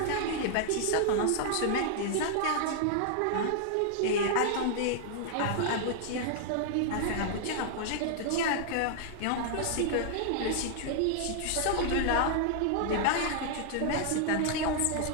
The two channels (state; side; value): different; both; correlation 0.00